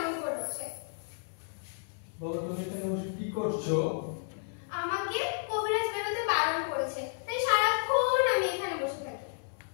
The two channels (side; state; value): right; silent; 56 dB below the other